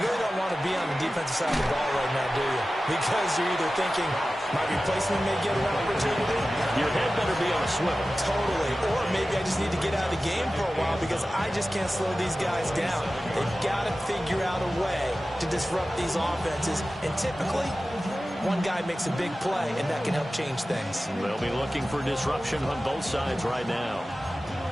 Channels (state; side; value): normal; both; correlation 0.95